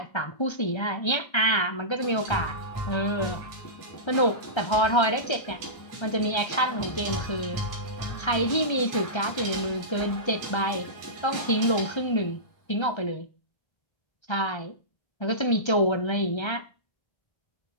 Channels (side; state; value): right; late; 1.3 ms